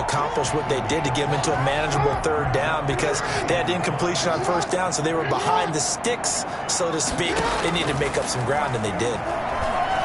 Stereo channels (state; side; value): identical; both; correlation 1.00